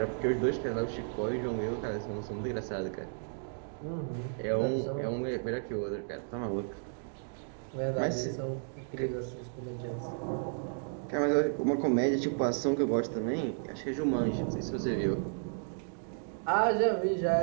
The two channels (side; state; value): left; silent; digital silence